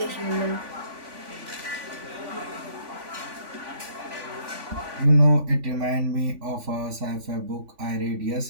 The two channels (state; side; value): late; left; 3.5 ms